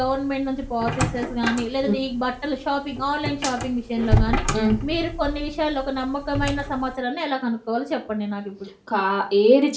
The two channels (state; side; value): identical; both; correlation 1.00